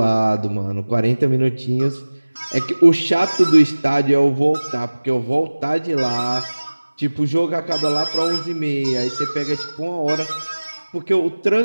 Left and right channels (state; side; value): inverted; both; correlation -1.00